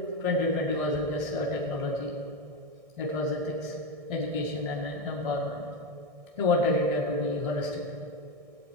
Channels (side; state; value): left; late; 1.6 ms